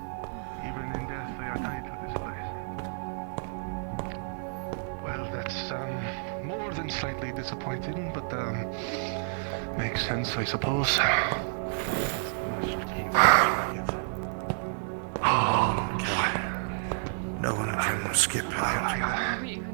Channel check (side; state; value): left; silent; 58 dB below the other